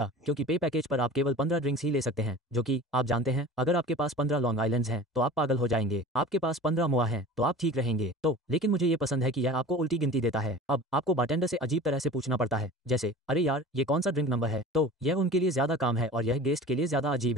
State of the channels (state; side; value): normal; both; correlation 0.39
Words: क्योंकि पे पैकेज पर आप केवल 15 ड्रिंक्स ही ले सकते हैं, जो कि आप जानते हैं अगर आपके पास 15 लॉन्ग आइलैंड्स हैं तो आप पागल हो जाएंगे। आपके पास 15 मोआ हैं तो आप ठीक रहेंगे। तो लेकिन मुझे ये पसंद है कि यह आपको उल्टी गिनती देता है। अब आपको बारटेंडर से अजीब तरह से पूछना पड़ता है, जैसे अरे यार ये कौन सा ड्रिंक नंबर है, तो यह उनके लिए ज्यादा काम है और यह गेस्ट के लिए ज्यादा अजीब